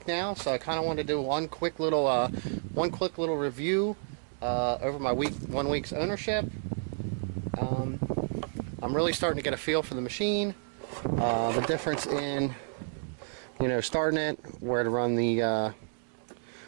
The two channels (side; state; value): left; silent; digital silence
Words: now, so I kind of want to do one quick little review over my 1 week's ownership. I'm really starting to get a feel for the machine, the difference in, you know, starting it, where to run